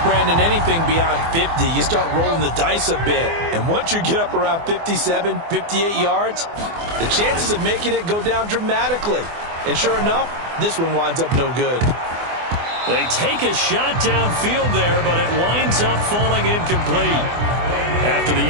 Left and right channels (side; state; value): left; late; 24 ms